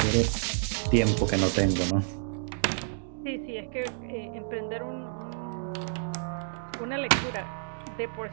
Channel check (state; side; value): silent; left; digital silence